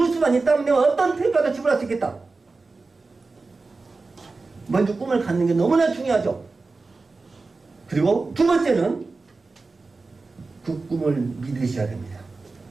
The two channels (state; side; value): quieter; left; 3.8 dB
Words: 수만 있다면 내가 어떤 태까지 지불할 수 있겠다. 먼저 꿈을 갖는 게 너무나 중요하죠. 그리고 두 번째는 그 꿈을 믿으셔야 됩니다.